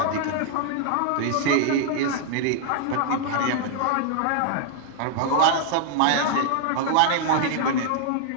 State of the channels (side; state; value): both; different; correlation -0.01